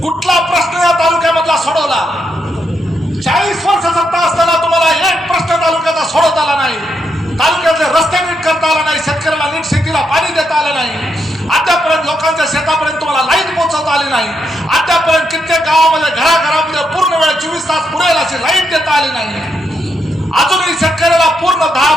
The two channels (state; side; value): normal; both; correlation 0.81